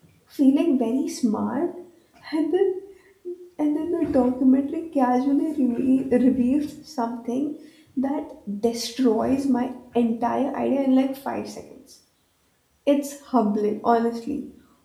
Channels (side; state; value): both; identical; correlation 1.00